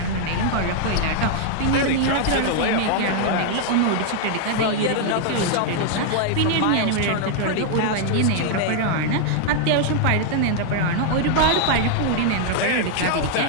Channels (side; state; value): both; different; correlation 0.00